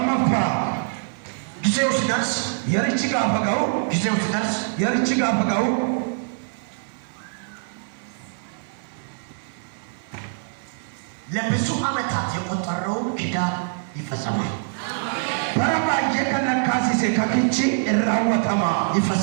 ጊዜው ሲደርስ የርቺ ጋፈጋው ጊዜው ሲደርስ የርቺ ጋፈጋው ለብዙ ዓመታት የቆጠረው ኪዳን ይፈጸማል። በረባየ ከነካሲሴ ከክቺ እራወተማ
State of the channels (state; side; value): silent; left; digital silence